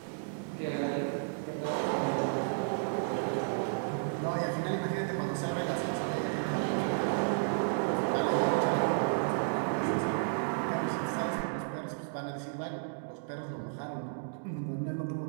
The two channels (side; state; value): left; silent; digital silence